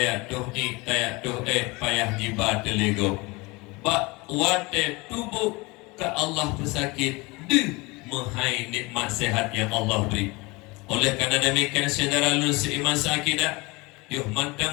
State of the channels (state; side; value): quieter; right; 24.8 dB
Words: tuh payah jibat lego. Bak wate tubuh ke Allah pesakit de menghai nikmat sehat yang Allah beri. Oleh karena demikian saudara lulus iman sakidah, yuh